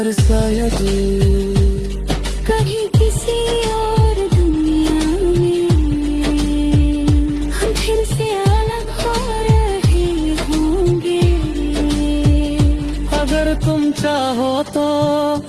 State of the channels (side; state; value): both; identical; correlation 1.00